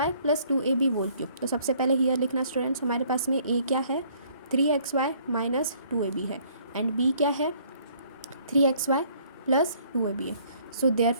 plus 2ab whole cube. तो सबसे पहले हियर लिखना स्टूडेंट्स, हमारे पास में a क्या है, 3xy माइनस 2ab है, एंड b क्या है, 3xy प्लस 2ab है। So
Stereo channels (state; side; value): inverted; both; correlation -0.61